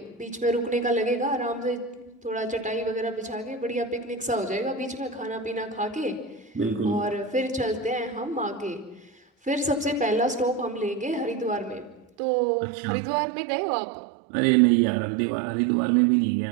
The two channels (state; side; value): drops out; left; at 12.1 s